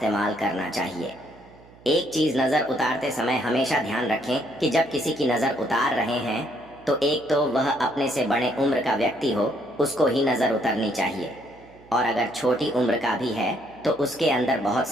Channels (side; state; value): right; noise; hum, 25 dB below the sound